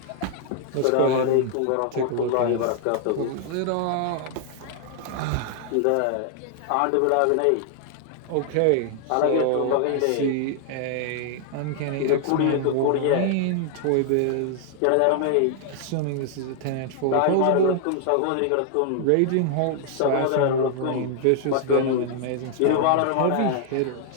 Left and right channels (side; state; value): both; different; correlation 0.00